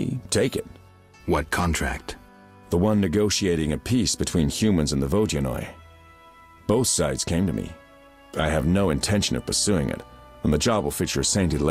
Take it. What contract? The one negotiating a peace between humans and the Vodyanoi. Both sides came to me. I have no intention of pursuing it, and the job will fit your sainted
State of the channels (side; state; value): both; identical; correlation 1.00